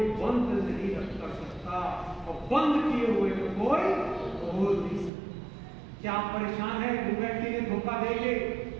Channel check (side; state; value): left; drops out; at 5.1 s